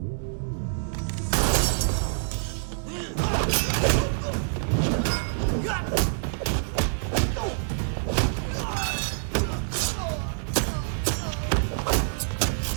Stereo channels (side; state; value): left; silent; 61 dB below the other